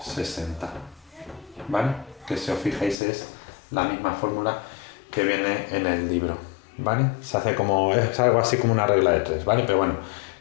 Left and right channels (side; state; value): right; drops out; at 3.0 s